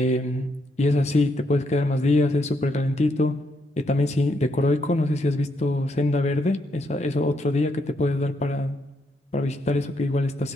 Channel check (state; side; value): normal; both; correlation 0.76